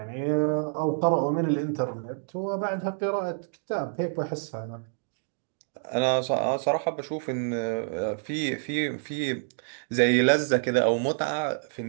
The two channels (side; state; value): left; silent; digital silence